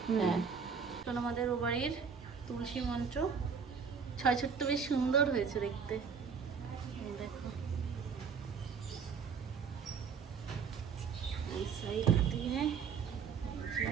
হ্যাঁ আমাদের ও বাড়ির তুলসী মঞ্চ 6 ছোট্ট, বেশ সুন্দর হয়েছে দেখতে। দেখো এই সাইড দিয়ে,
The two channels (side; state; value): left; quieter; 6.2 dB